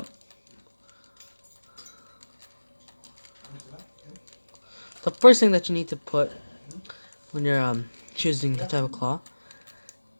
the first thing that you need to put when you're choosing the type of claw,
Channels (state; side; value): inverted; both; correlation -1.00